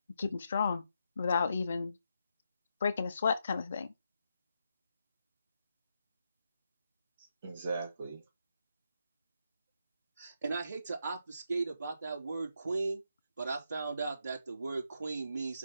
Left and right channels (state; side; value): inverted; both; correlation -0.82